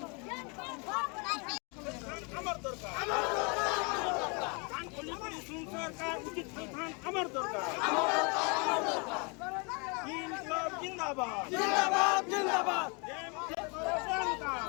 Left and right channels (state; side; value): quieter; right; 32.4 dB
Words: हमर दरकार कान खोली करी सुन सरकार उचित स्थान हमर दरकार इनकलाब जिंदाबाद